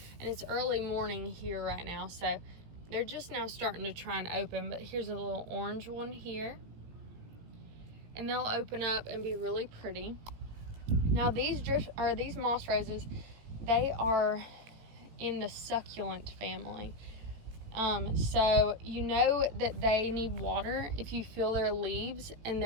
And it's early morning here right now, so they're just now starting to try and open. But here's a little orange one here, and they'll open up and be really pretty. Now these moss roses, they are in the succulent family. So you know that they need water if you feel their leaves and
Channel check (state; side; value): late; left; 18 ms